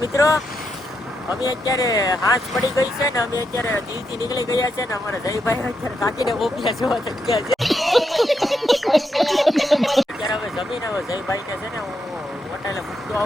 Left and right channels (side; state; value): both; normal; correlation 0.82